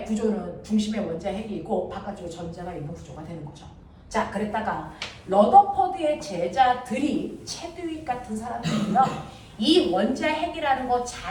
구조는 중심에 원자핵이 있고 바깥쪽에 전자가 있는 구조가 되는 거죠. 자, 그랬다가 러더퍼드의 제자들이 체드윅 같은 사람들이요. 이 원자핵이라는 것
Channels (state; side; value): identical; both; correlation 1.00